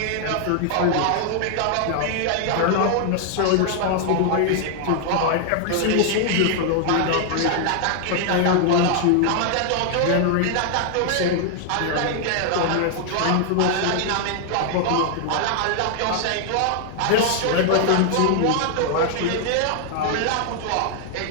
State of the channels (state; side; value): different; both; correlation 0.00